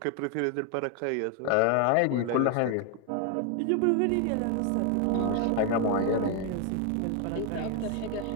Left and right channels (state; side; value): different; both; correlation 0.01